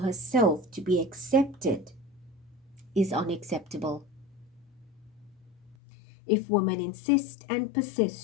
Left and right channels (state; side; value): drops out; right; at 5.8 s